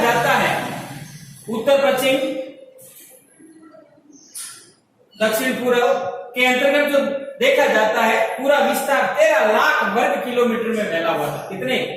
जाता है, उत्तर पश्चिम दक्षिण पूर्व के अंतर्गत जो देखा जाता है, पूरा विस्तार 13 लाख वर्ग किलोमीटर में फैला हुआ था। कितने?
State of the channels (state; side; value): identical; both; correlation 1.00